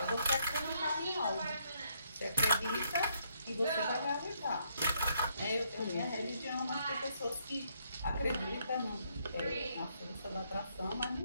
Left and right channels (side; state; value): both; inverted; correlation -0.73